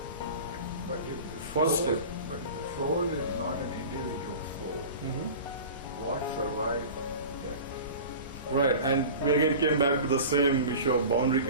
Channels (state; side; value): inverted; both; correlation -0.36